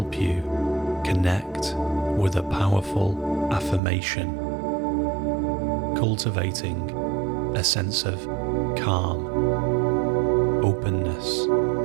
you connect with a powerful affirmation, cultivating a sense of calm, openness,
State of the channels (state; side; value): drops out; left; at 3.8 s